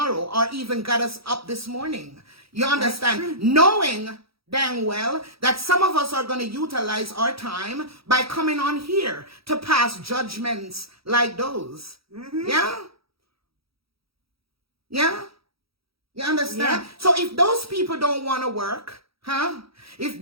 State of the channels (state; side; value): late; left; 0.76 ms